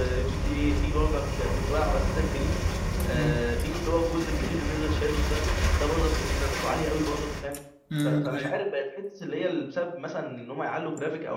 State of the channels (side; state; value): both; identical; correlation 1.00